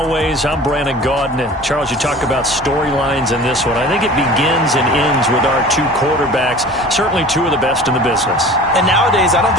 I'm Brandon Gaudin. And Charles, you talk about storylines in this one. I think it begins and ends with our two quarterbacks, certainly two of the best in the business. And nowadays, I don't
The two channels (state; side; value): normal; both; correlation 0.41